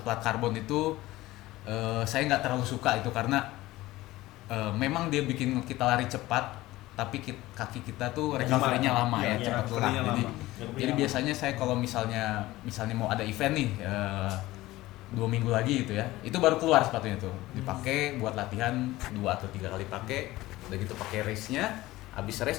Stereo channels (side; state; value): right; quieter; 17.7 dB